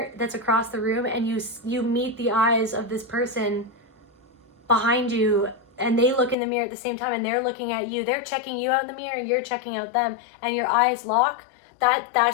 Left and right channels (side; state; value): right; drops out; at 6.4 s